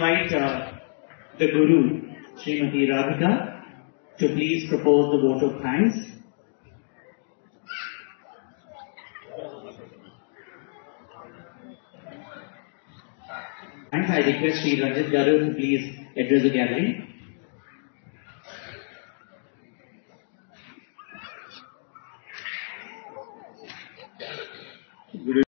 the Guru, Srimati Radhika, to please propose the vote of thanks. And I request Sri Ranjit Garu to please address the gathering.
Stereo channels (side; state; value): right; silent; 60 dB below the other